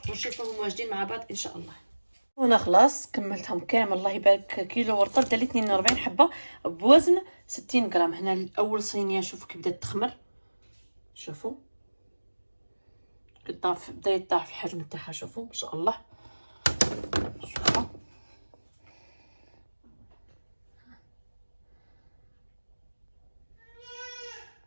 ونشوفهم واجدين مع بعض ان شاء الله. وانا خلاص كملتهم كامل الله يبارك. كيلو ورطه دالي 42 حبه بوزن 60 غرام. هنا اول صينيه شوفوا كي بدات تخمر. شوفوا كطاف بدا يطاح في الحجم تاعها. شوفوا ما شاء الله. شوفوا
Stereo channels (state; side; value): inverted; both; correlation -1.00